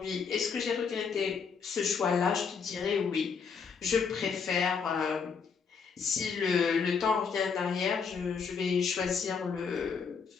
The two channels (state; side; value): quieter; right; 5.8 dB